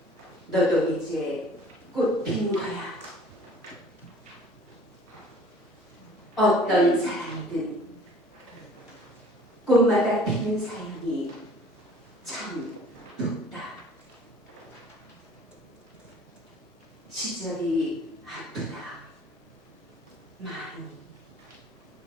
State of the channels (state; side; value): normal; both; correlation 0.52